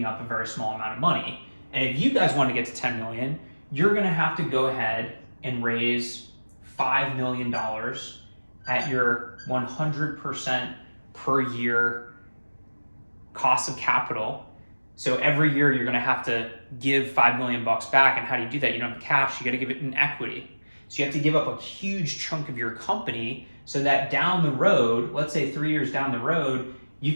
up a very small amount of money. And if you guys want to get to 10 million, you're going to have to go ahead and raise $5 million at your 100% per year cost of capital. So every year you're going to have to give 5 million bucks back. And how do you do that? You don't have the cash, you got to give it in equity. So you have to give up a huge chunk of your company so that down the road, let's say 3 years down the road,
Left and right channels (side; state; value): both; inverted; correlation -1.00